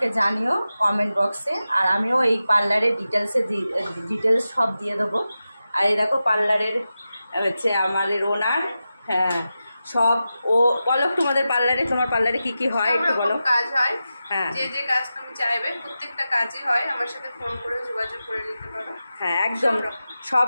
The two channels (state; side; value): inverted; both; correlation -0.92